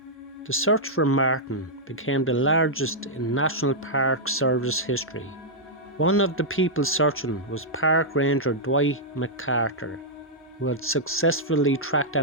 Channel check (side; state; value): both; normal; correlation -0.08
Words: The search for Martin became the largest in National Park Service history. One of the people searching was Park Ranger Dwight McCarter, who had successfully tracked